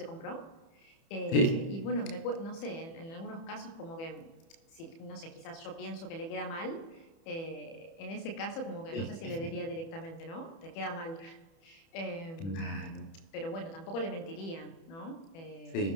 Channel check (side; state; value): right; late; 30 ms